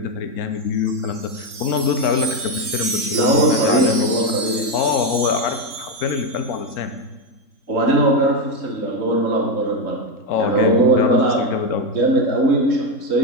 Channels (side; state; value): right; late; 3.7 ms